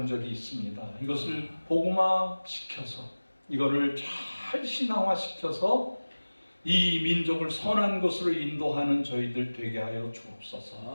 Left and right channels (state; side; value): inverted; both; correlation -1.00